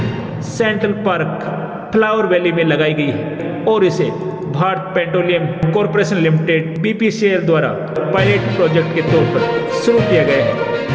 सेंट्रल पार्क फ्लावर वैली में लगाई गई है और इसे Bharat petroleum corporation limited BPCL द्वारा पायलट प्रोजेक्ट के तौर पर शुरू किया गया है।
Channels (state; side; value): identical; both; correlation 1.00